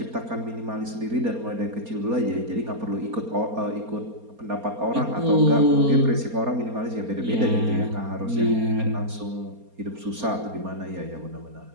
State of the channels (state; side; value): late; left; 4.3 ms